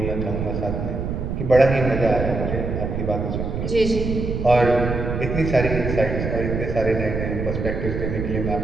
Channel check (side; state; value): right; noise; rumble, 3 dB below the sound